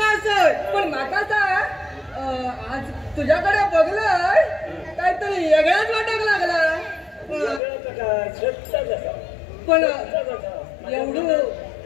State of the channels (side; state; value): right; drops out; at 7.6 s